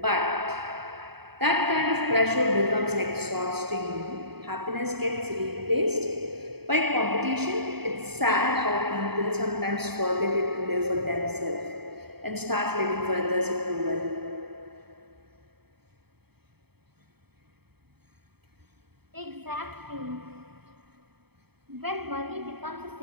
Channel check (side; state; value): left; late; 0.97 ms